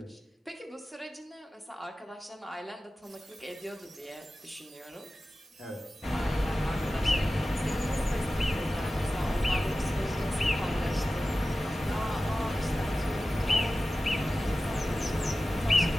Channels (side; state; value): both; normal; correlation 0.94